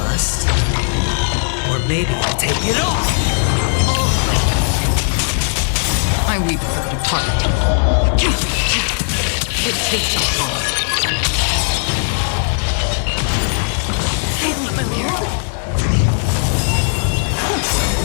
Or maybe I'll take it all. I weep for the departed. It takes a fall. Familiar.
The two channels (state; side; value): silent; right; 68 dB below the other